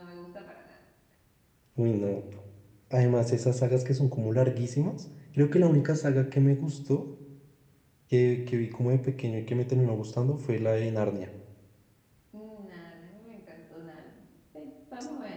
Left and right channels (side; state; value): both; identical; correlation 1.00